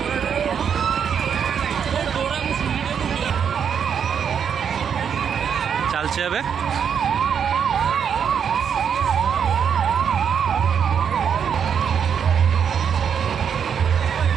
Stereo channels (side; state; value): left; quieter; 7.5 dB